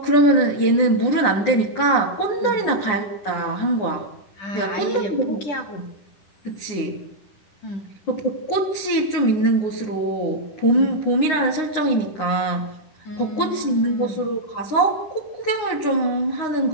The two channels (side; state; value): right; late; 9.6 ms